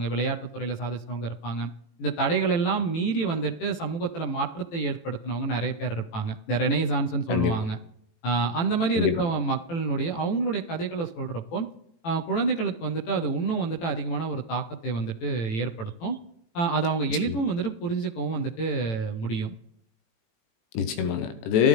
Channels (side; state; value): right; late; 18 ms